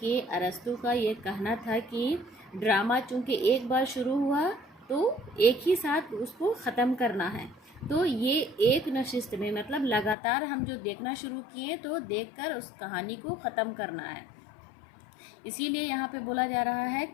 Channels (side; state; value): right; drops out; at 10.2 s